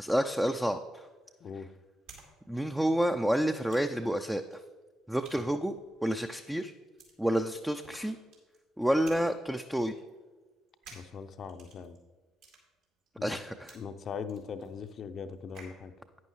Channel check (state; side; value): normal; both; correlation 0.92